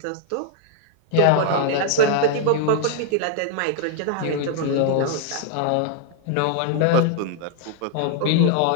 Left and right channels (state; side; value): different; both; correlation 0.00